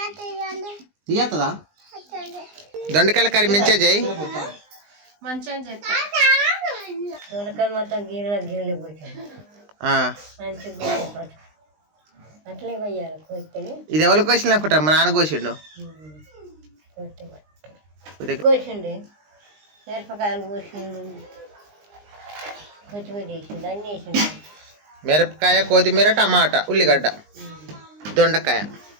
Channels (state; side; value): late; left; 20 ms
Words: తీయత్తదా? దొండకాయల కర్రీ మంచిగా చేయి. మంచిగా చేస్తా. మొత్తం గిన్నెలు పోతాను మంచిగా అట్లే పోయాలి కోసుకొని. ఇది ఎవరు కోసిండు అనుకుంటా? మా నాన్న కోసిండు. కోసిండు మిరపకాయలు కోసిండు కొత్తిమీర వేసిండు అన్నీ వేసిండు. మిరపకాయ, కొత్తిమీర, టమాటా, ఉల్లిగడ్డ, దొండకాయ